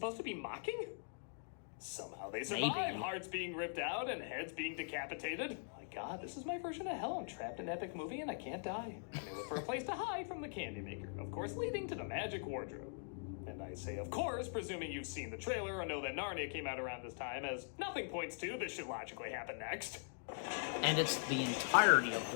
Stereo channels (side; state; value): right; silent; digital silence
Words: to be mocking? Somehow they survive. Maybe. Hearts being ripped out and heads being decapitated. My God, this is my version of hell. I'm trapped in an epic movie and I can't die. I look for a place to hide from the candy maker. Of course, leading to the magic wardrobe. And I say, of course, presuming you've seen the trailer or know that Narnia came out around this time, as nothing points to this should logically happen next. And it's the entirety of